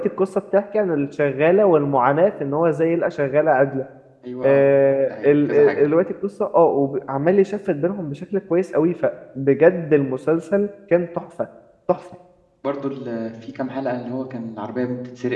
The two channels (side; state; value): both; identical; correlation 1.00